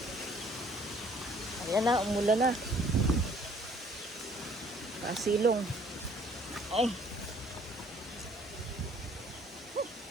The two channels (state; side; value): normal; both; correlation 0.58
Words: Ayan na, umulan na. Kasilong. Ay.